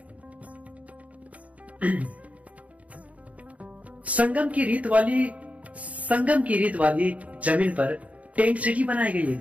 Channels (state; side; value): late; left; 0.068 ms